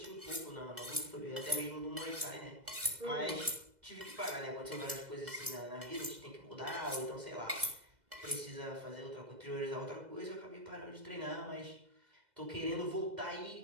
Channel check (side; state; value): left; late; 2.0 ms